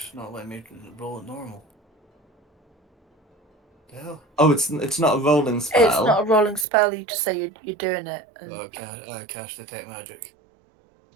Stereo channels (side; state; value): left; drops out; at 6.7 s